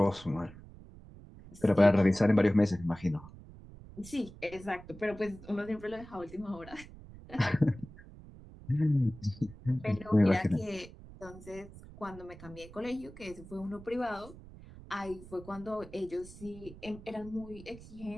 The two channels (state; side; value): noise; right; rumble, 17 dB below the sound